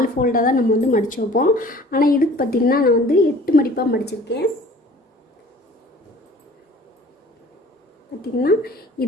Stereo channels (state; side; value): normal; both; correlation 0.49